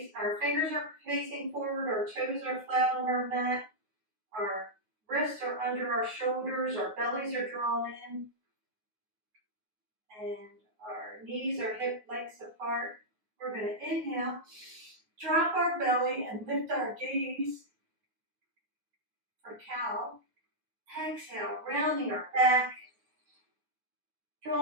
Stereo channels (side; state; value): left; late; 9.4 ms